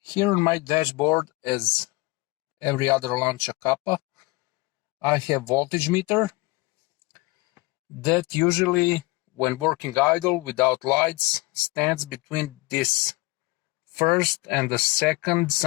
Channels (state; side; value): quieter; right; 22.5 dB